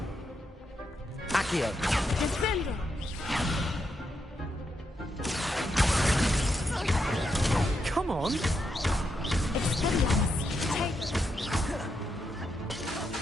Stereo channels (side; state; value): both; normal; correlation 0.82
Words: Accio! Defender! Come on! Expelliarmus!